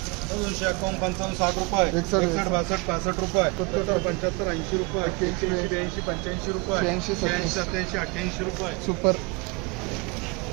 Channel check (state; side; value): quieter; left; 28.5 dB